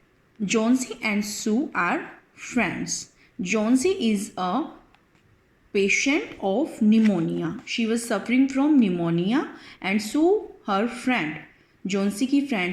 Johnsy and Sue are friends. Johnsy is a patient of pneumonia. She was suffering from pneumonia, and Sue her friend. Johnsy की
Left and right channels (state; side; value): identical; both; correlation 1.00